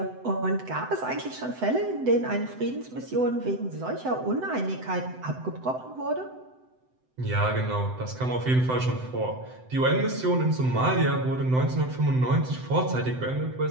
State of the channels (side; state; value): left; late; 7.9 ms